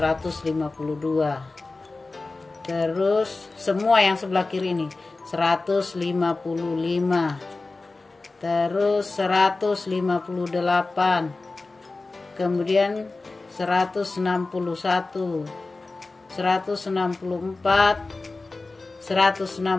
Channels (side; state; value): right; quieter; 3.5 dB